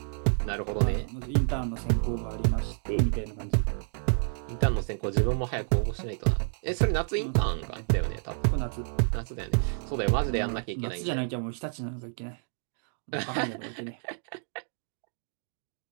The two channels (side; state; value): left; silent; digital silence